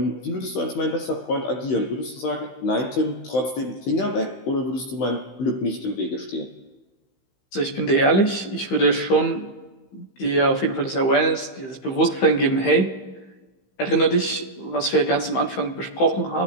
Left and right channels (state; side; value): late; right; 15 ms